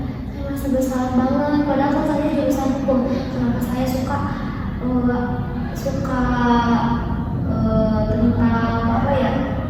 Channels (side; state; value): both; identical; correlation 1.00